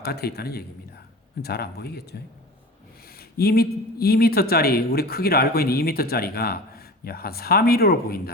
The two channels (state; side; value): normal; both; correlation 0.36